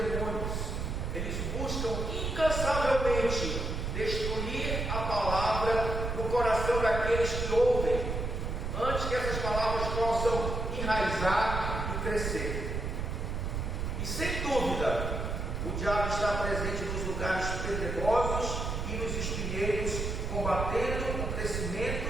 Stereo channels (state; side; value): noise; right; rumble, 2 dB below the sound